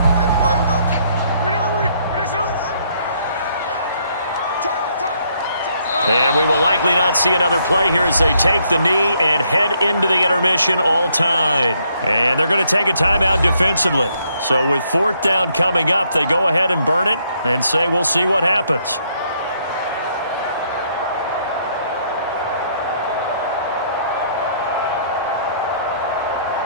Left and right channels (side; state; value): both; inverted; correlation -0.70